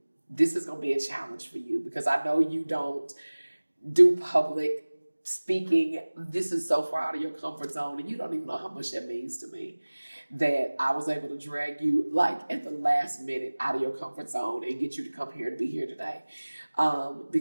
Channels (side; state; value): both; inverted; correlation -1.00